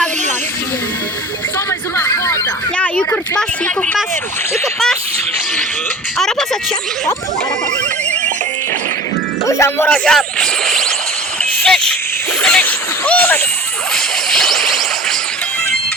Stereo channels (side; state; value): both; normal; correlation 0.39